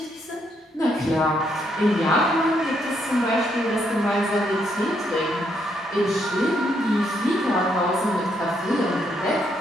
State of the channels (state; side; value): normal; both; correlation 0.75